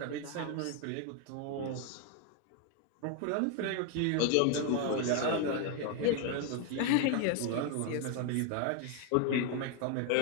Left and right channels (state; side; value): different; both; correlation 0.01